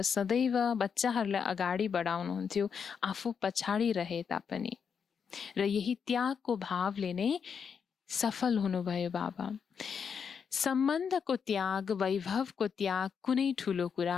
सदैव बच्चाहरूलाई अगाडि बढाउनुहुन्थ्यो, आफू पछाडि रहे तापनि, र यही त्यागको भावले नै सफल हुनुभयो बाबा। सम्बन्धको त्याग, वैभवको त्याग कुनै ठुलो कुरा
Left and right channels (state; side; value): quieter; right; 6.7 dB